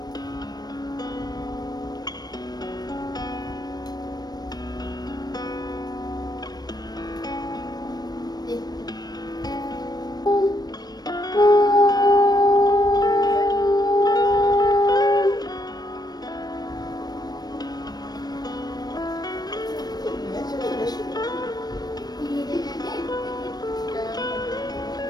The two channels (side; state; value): right; late; 0.19 ms